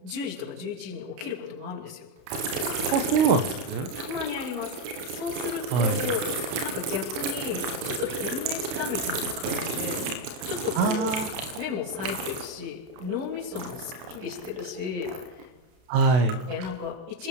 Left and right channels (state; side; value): late; left; 32 ms